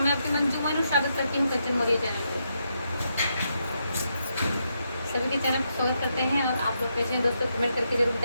मैं आपकी मंजू मोनू स्वागत करती हूँ सचिन मौर्य चैनल पे। सभी के चैनल पर स्वागत करते हैं और आप लोग कैसे हैं दोस्तों, कमेंट करके जरूर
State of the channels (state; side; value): inverted; both; correlation -0.81